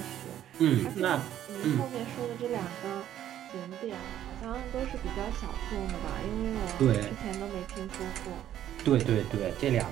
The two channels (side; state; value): left; quieter; 11.4 dB